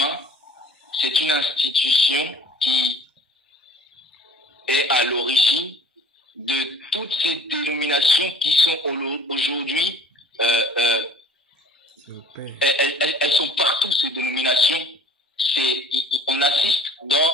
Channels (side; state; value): both; normal; correlation 0.50